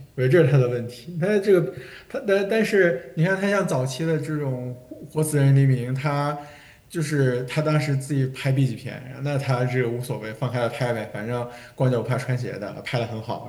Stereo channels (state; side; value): identical; both; correlation 1.00